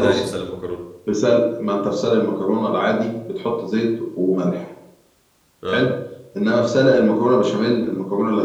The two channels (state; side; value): identical; both; correlation 1.00